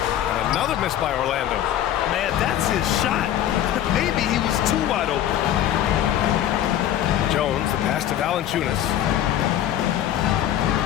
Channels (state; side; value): quieter; right; 11.4 dB